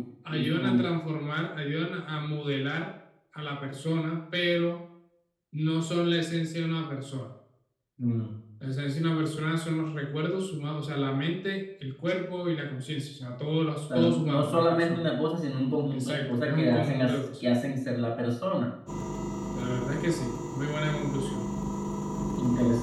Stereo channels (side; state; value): both; identical; correlation 1.00